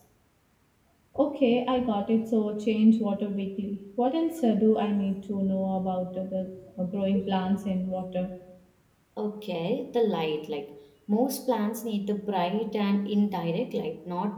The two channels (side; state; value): both; identical; correlation 1.00